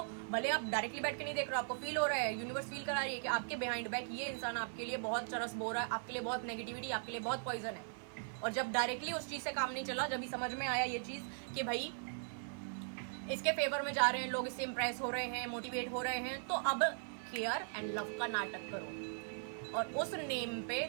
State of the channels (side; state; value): left; silent; 52 dB below the other